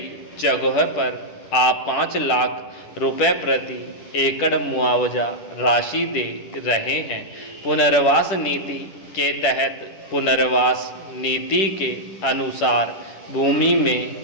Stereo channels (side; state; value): right; late; 10 ms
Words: जगह पर आप 5 लाख रुपए प्रति एकड़ मुआवजा राशि दे रहे हैं। पुनर्वास नीति के तहत पुनर्वास नीति के अनुसार भूमि में